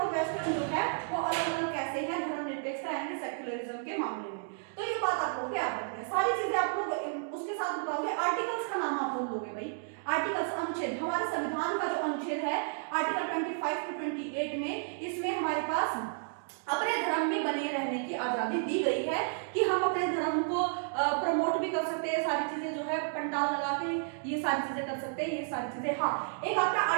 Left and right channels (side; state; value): left; silent; digital silence